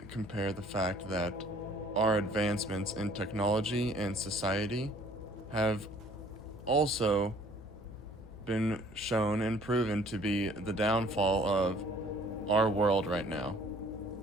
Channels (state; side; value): noise; left; hum, 17 dB below the sound